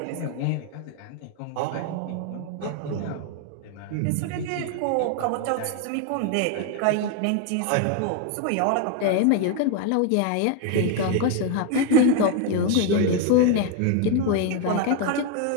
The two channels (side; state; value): both; different; correlation 0.01